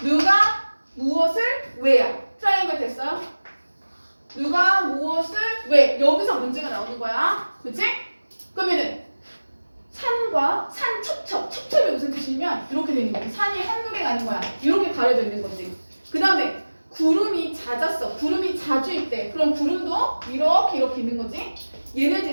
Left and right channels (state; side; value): inverted; both; correlation -1.00